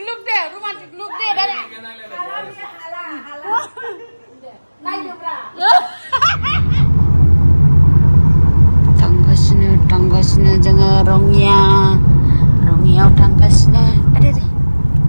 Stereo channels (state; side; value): inverted; both; correlation -1.00